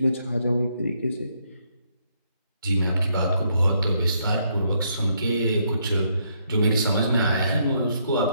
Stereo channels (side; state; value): both; inverted; correlation -0.74